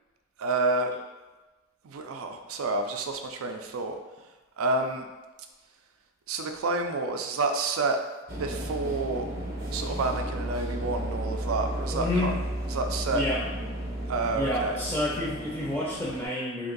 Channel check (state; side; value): normal; both; correlation 0.14